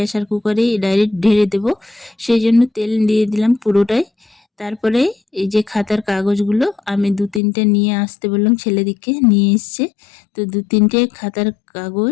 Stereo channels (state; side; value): drops out; right; at 7.4 s